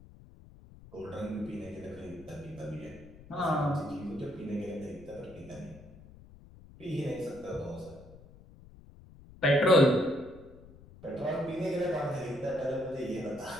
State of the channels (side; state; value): left; noise; rumble, 20 dB below the sound